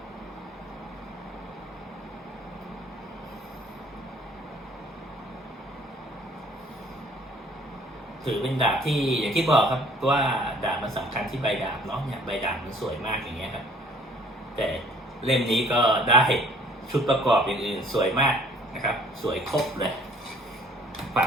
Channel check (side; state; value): both; normal; correlation 0.56